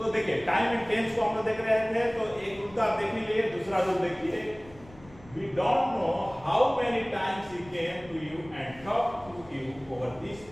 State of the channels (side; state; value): left; noise; rumble, 22 dB below the sound